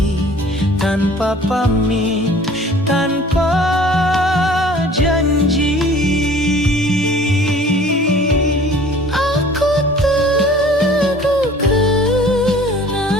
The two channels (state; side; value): normal; both; correlation 0.50